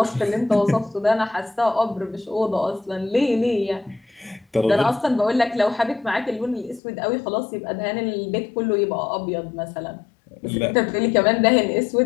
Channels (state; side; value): drops out; right; at 6.8 s